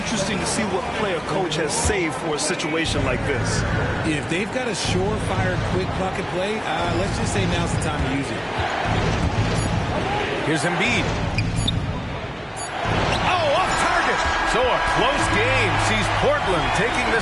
to see what play a coach has saved for a situation like this. If they've got a surefire, quick bucket play, let's just say now's the time to use it. Here's Embiid. Oh, off target. So a close game sees Portland taking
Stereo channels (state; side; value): identical; both; correlation 1.00